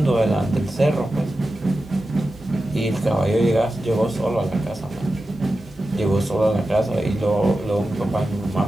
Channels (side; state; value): both; normal; correlation 0.92